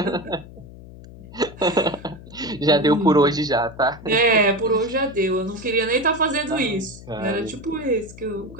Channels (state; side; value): noise; left; hum, 17 dB below the sound